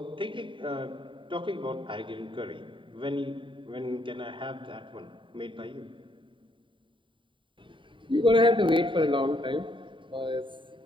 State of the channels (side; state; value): left; late; 0.24 ms